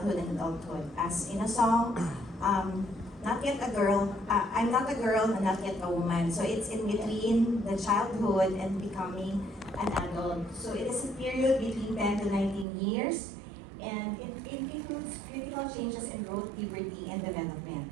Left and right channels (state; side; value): drops out; left; at 12.7 s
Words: and adulthood. As in a song, not yet a girl, I'm not a girl and not yet a woman. So it's in between the childhood and becoming an adult. So it is a period between 10 to 19 years, and it includes critical changes in growth, puberty, and development.